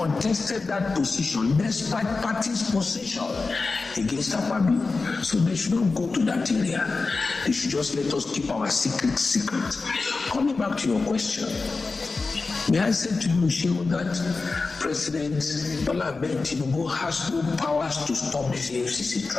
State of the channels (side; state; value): right; quieter; 3.9 dB